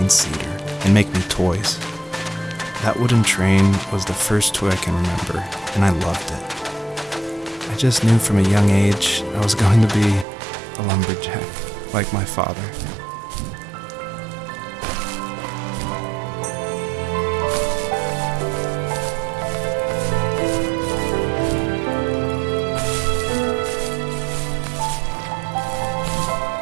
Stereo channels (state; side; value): drops out; left; at 10.2 s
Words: cedar and make me toys. That wooden train was the first toy I can remember, and I loved it. I just knew from a young age I was going to be a lumberjack, like my father.